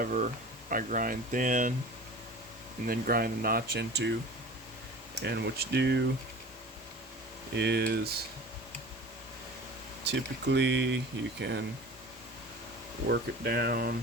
I grind thin and then grind a notch into. And what you do is typically you can work it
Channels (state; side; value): normal; both; correlation 0.39